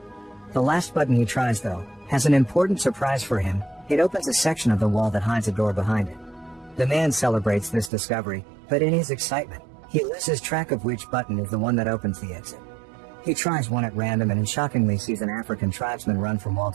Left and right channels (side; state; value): left; drops out; at 7.9 s